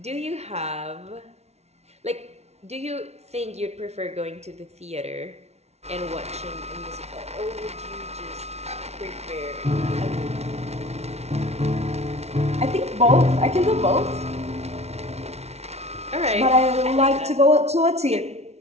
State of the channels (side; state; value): left; late; 0.31 ms